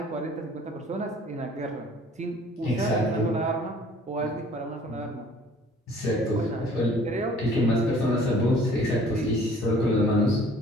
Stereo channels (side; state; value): both; normal; correlation 0.53